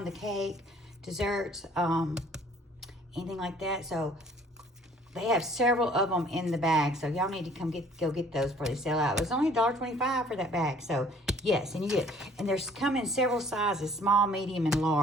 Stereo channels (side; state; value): both; normal; correlation 0.56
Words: the cake, desserts, anything like that. So they have several of them in the bag. So y'all need to go get those before they sell out. It was only $1.25 for that bag. So yes, and you get, and there's come in several sizes, small, medium, and